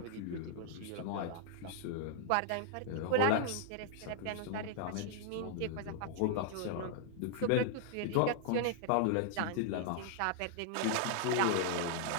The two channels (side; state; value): both; different; correlation -0.01